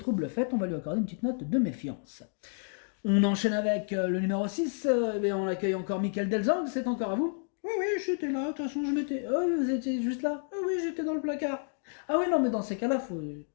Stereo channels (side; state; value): right; silent; 58 dB below the other